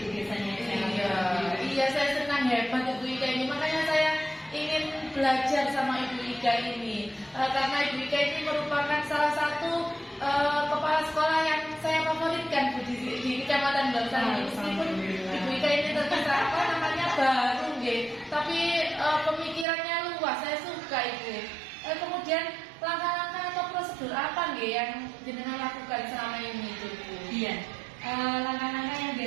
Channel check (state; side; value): drops out; left; at 19.7 s